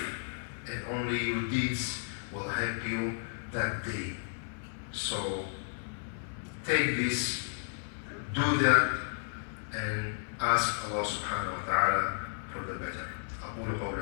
and only your deeds will help you that day. So take this, do that, and ask Allah subhanahu wa ta'ala for the better. أقول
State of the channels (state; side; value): silent; right; 56 dB below the other